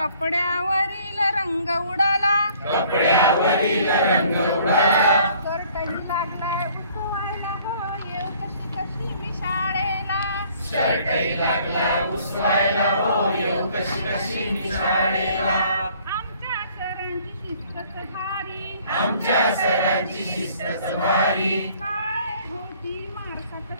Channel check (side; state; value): both; inverted; correlation -0.57